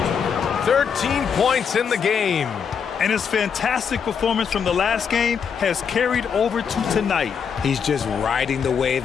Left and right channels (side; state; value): right; quieter; 6.9 dB